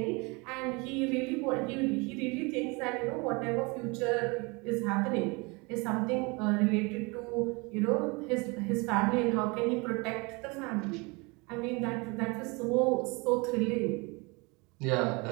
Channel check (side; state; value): left; quieter; 27.8 dB